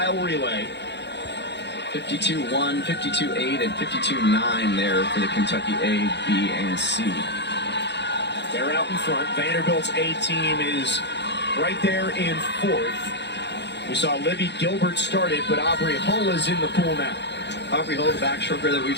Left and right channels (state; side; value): late; right; 0.50 ms